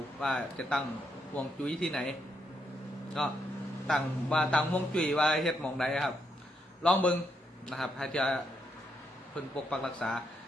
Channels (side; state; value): both; normal; correlation 0.79